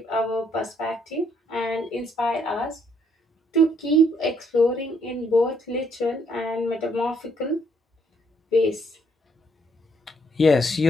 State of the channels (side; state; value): both; normal; correlation 0.70